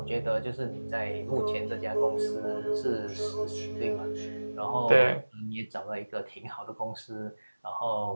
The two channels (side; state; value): both; inverted; correlation -1.00